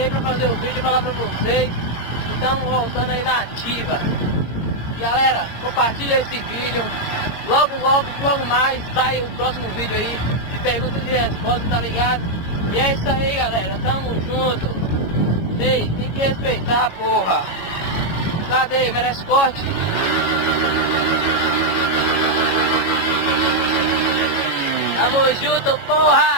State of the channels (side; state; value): right; late; 22 ms